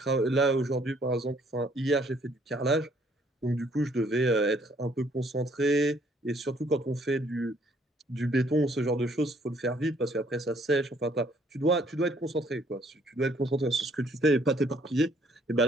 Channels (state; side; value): normal; both; correlation 0.64